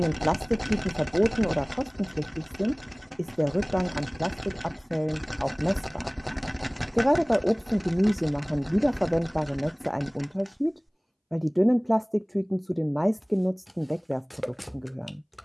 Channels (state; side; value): identical; both; correlation 1.00